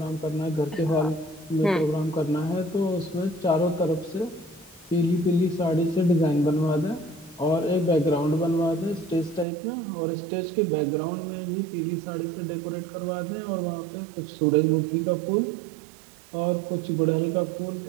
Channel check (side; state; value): left; drops out; at 9.5 s